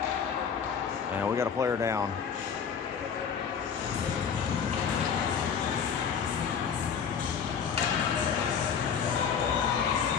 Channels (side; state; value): right; quieter; 7.0 dB